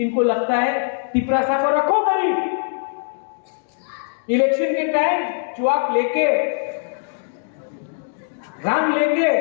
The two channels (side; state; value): right; silent; digital silence